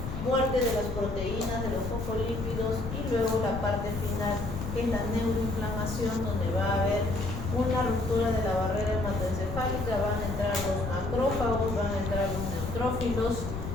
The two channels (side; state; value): left; noise; rumble, 6 dB below the sound